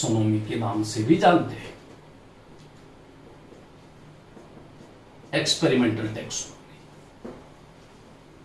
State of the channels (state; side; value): identical; both; correlation 1.00